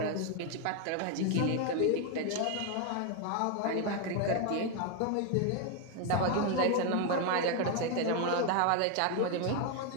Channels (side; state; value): both; different; correlation 0.01